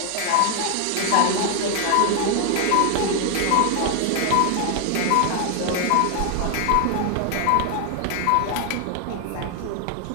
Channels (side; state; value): both; different; correlation 0.00